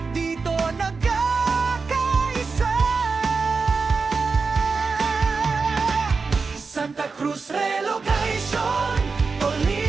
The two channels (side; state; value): left; quieter; 4.6 dB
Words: dito nagkakaisa. Santa Cruz Relocation,